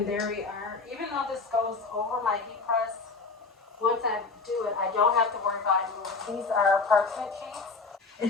there we are. Even though this goes over my heat press, once I do it, I don't have to worry about it moving. These are parchment sheets.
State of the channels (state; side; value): quieter; right; 4.2 dB